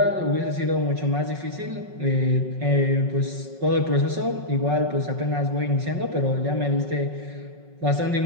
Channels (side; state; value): left; late; 5.4 ms